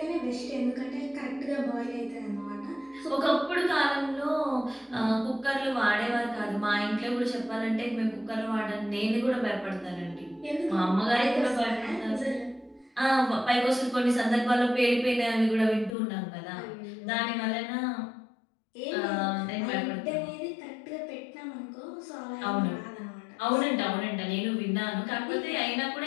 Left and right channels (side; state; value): right; drops out; at 16.0 s